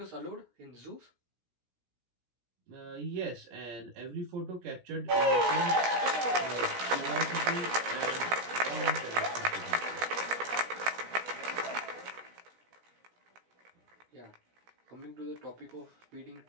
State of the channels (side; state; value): left; late; 17 ms